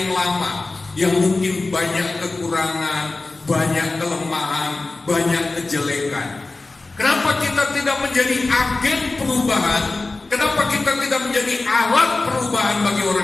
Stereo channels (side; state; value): right; quieter; 3.4 dB